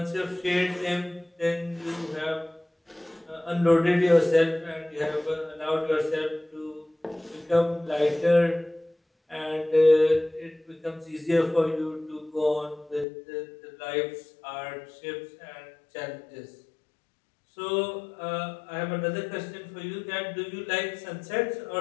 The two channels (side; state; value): right; drops out; at 13.1 s